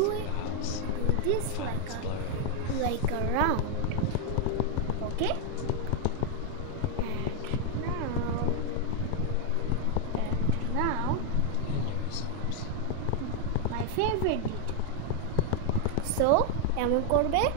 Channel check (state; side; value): different; both; correlation 0.00